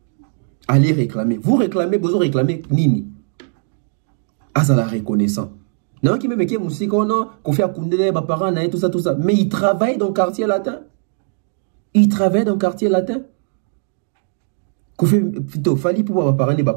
Allez réclamer. Vous réclamez, Bozo réclamez, Nini. Ah, ça la reconnaissant. Non, qui me met qui musique, non, qu'on fait à Koundele, Baparana et tout ça. Mais il travaille dans le quartier latin. Il travaille dans le quartier latin. Koffi, plutôt, Fali pour parler de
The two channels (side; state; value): left; silent; 67 dB below the other